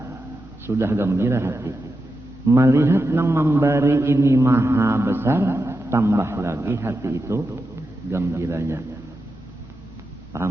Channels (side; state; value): both; normal; correlation 0.89